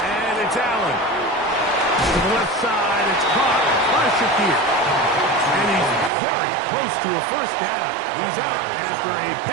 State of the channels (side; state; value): left; drops out; at 6.1 s